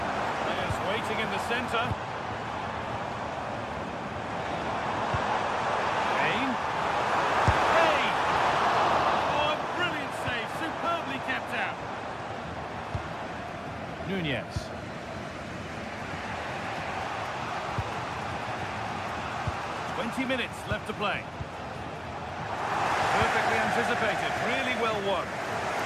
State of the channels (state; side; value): identical; both; correlation 1.00